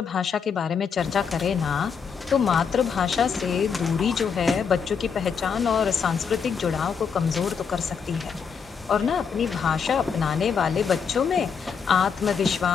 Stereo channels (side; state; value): right; quieter; 6.4 dB